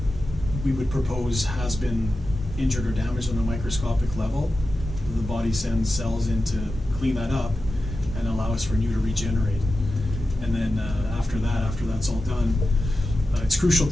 we would propose has been injured or damaged on a microscopic level, the body sends cells in to clean that up and allow us for new to regenerate. And then after that's all done, it's crucial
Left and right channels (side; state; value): both; normal; correlation 0.93